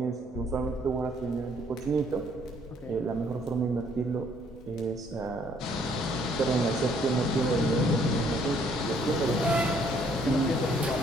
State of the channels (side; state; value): both; normal; correlation 0.64